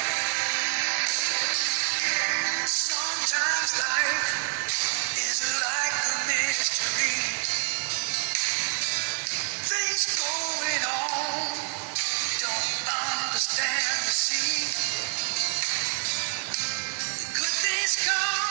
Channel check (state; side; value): silent; left; 56 dB below the other